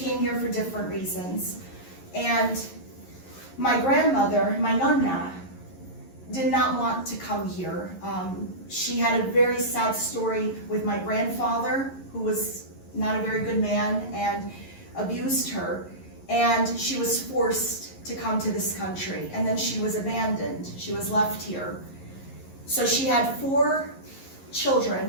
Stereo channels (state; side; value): late; right; 11 ms